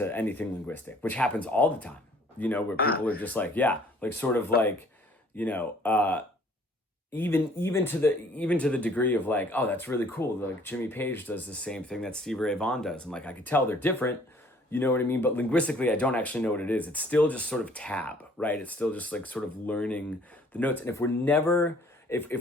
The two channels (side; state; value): both; normal; correlation 0.57